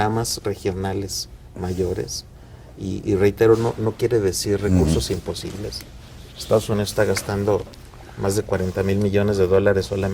regionales mayores, y reitero, no quiere decir recursos imposibles. Estados Unidos está gastando más de 40,000 millones de dólares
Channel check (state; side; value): identical; both; correlation 1.00